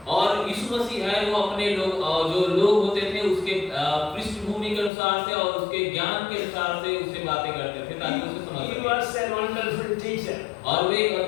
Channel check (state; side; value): drops out; right; at 4.9 s